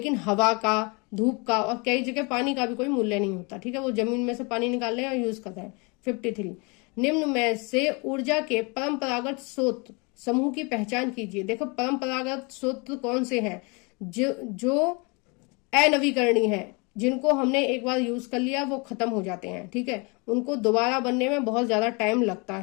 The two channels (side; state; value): right; quieter; 30.2 dB